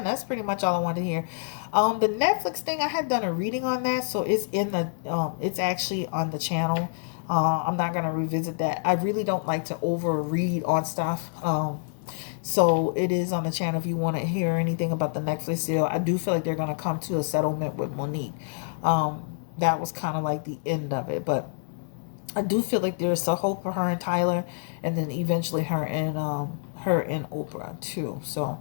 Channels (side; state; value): right; silent; digital silence